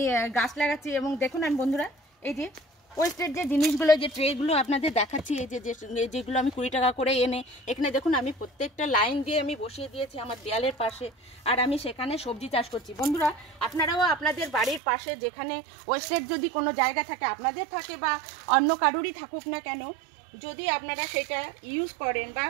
গাছ লাগাচ্ছি। এবং দেখুন আমি বন্ধুরা এই যে ওয়েস্টেড যে জিনিসগুলো, যে ট্রেগুলো আপনাদের দেখাচ্ছি, এই যে যেগুলো আমি 20 টাকা করে এনে এখানে দেখুন আমি প্রত্যেকটা লাইন দিয়ে আমি বসিয়ে দিয়েছি আমার দেয়ালের পাশে। আর আমি সেখানে সবজি চাষ করছি। বন্ধুরা আপনারাও আপনাদের বাড়ির পাশে যেখানে ওয়েস্টেড যদি কোনো জায়গা থাকে, আপনাদের থাকে বা অন্য কারোরই থাকুক না কেন, যদি আপনারা সেটা ইউজ করেন বা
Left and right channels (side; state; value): left; drops out; at 14.8 s